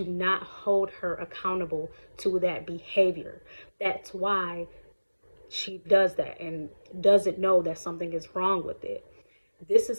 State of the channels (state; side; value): inverted; both; correlation -1.00